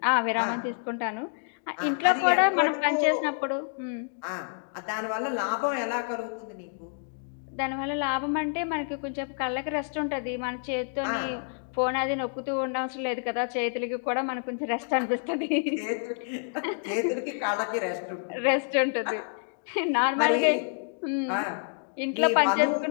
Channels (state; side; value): silent; right; 59 dB below the other